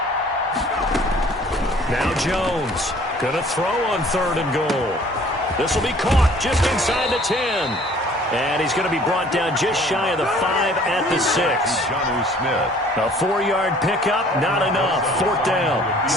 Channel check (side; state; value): both; normal; correlation 0.54